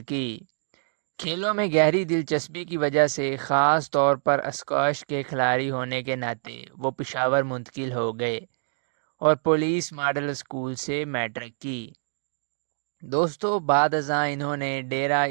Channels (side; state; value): left; silent; digital silence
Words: کی۔ کھیلوں میں گہری دلچسپی کی وجہ سے، خاص طور پر اسکواش کے کھلاڑی ہونے کے ناطے، وہ پشاور منتقل ہو گئے اور پولیس ماڈل اسکول سے میٹرک کی۔ دوستو، بعد ازاں انہوں نے ڈیرہ